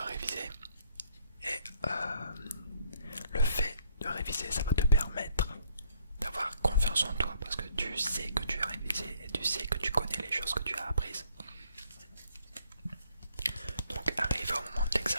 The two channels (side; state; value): both; inverted; correlation -0.66